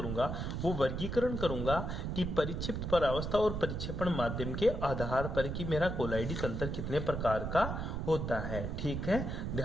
वो वर्गीकरण करूंगा कि परिक्षिप्त परावस्था और परिक्षेपण माध्यम के आधार पर कि मेरा कोलाइडी तंत्र कितने प्रकार का होता है। ठीक है,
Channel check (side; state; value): right; noise; rumble, 3 dB below the sound